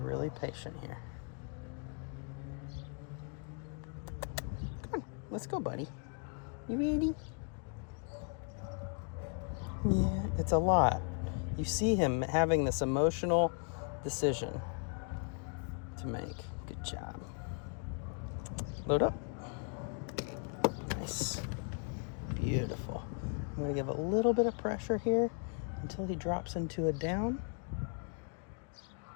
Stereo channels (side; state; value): right; quieter; 39.8 dB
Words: patient here. Come on, let's go, buddy. You ready? Yeah, it's a lot. You see him having this emotional decision to make. Good job. Load up. Nice. Beautiful. I'm going to give a little bit of pressure here until he drops into a down.